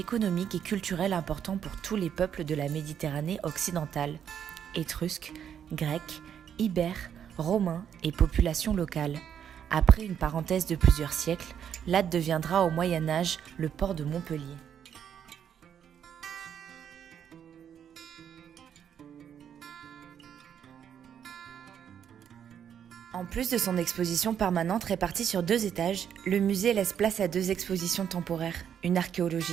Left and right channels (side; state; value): left; quieter; 8.7 dB